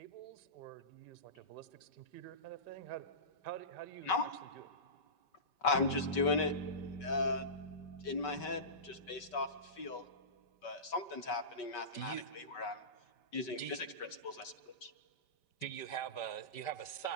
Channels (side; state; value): right; late; 5.3 ms